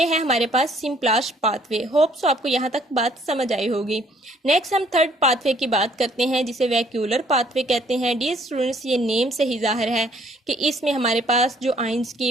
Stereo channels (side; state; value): both; normal; correlation 0.62